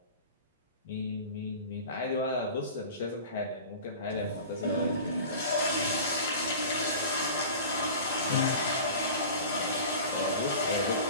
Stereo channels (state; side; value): inverted; both; correlation -0.37